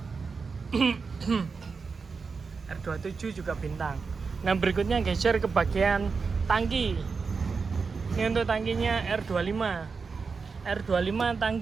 R27 juga bintang. Nah, berikutnya geser ke bagian tangki. Ini untuk tangkinya R25. R25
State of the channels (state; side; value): quieter; left; 4.9 dB